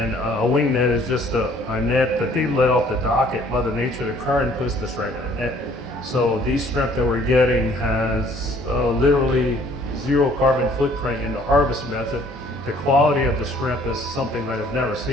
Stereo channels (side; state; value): both; normal; correlation 0.58